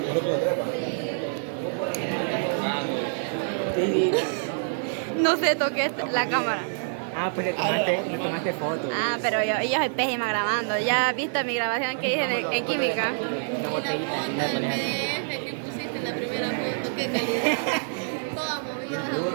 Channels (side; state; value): left; silent; digital silence